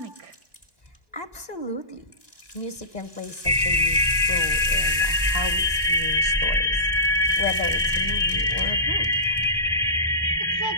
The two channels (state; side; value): late; left; 1.1 ms